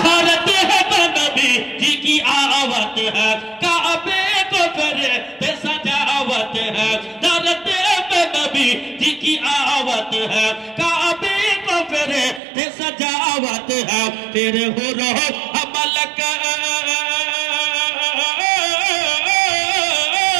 थारे तो नबी जी की आवाज है, काबे को करे सजावत है। दरते पे नबी जी की आवत है, काबे को करे सजावत है। तेरे हो रहो अमल का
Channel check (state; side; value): drops out; left; at 12.4 s